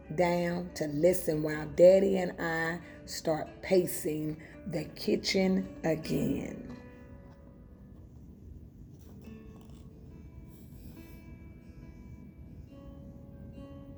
down to listen while Daddy and I start pacing the kitchen again.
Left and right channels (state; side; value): identical; both; correlation 1.00